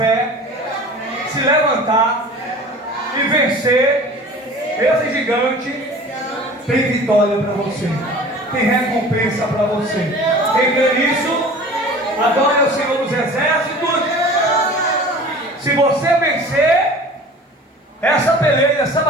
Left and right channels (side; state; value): both; normal; correlation 0.42